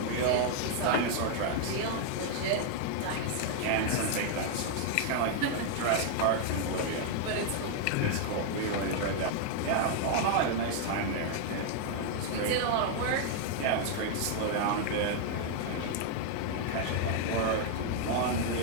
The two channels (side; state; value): both; different; correlation 0.00